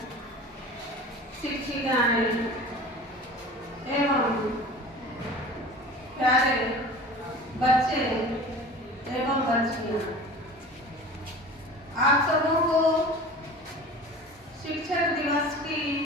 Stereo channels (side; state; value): both; normal; correlation 0.39